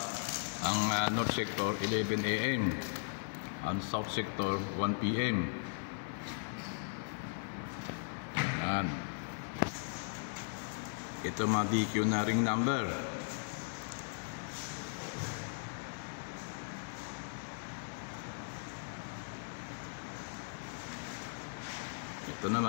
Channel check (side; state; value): right; silent; digital silence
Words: Ang North Sector 11 AM, ang South Sector 1 PM. Yan. Ito mga DQ na ring number. Ito